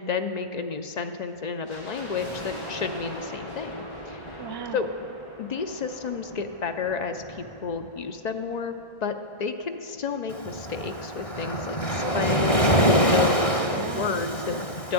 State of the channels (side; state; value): right; late; 1.6 ms